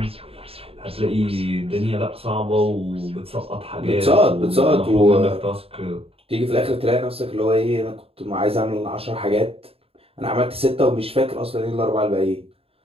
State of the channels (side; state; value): left; late; 0.28 ms